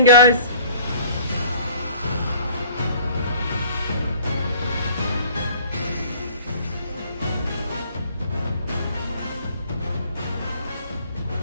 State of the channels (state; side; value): inverted; both; correlation -0.51